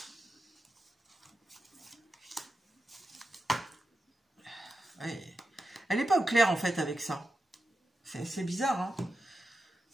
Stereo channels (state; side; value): normal; both; correlation 0.90